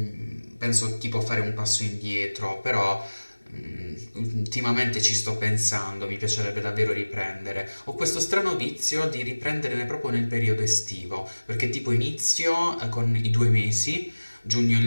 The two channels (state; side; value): inverted; both; correlation -1.00